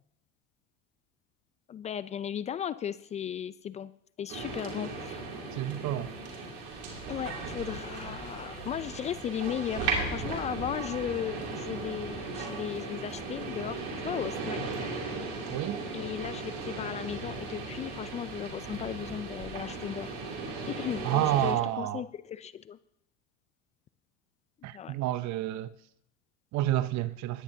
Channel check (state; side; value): normal; both; correlation 0.17